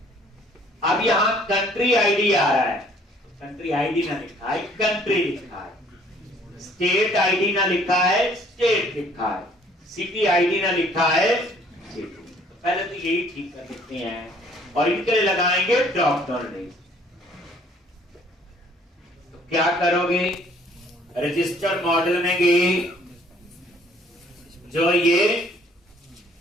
अब यहां कंट्री आईडी आ रहा है, कंट्री आईडी ना लिखा है, कंट्री लिखा है। स्टेट आईडी ना लिखा है, स्टेट लिखा है। सिटी आईडी ना लिखा है, सिटी। तो पहले तो यही ठीक कर देते हैं और इनके लिए लगाएंगे ड्रॉप डाउन लिस्ट। तो क्या करोगे, रजिस्टर मॉडल में गए, जो ये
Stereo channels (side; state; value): both; normal; correlation 0.59